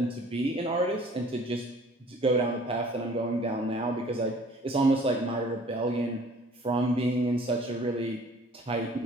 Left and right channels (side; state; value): both; normal; correlation 0.52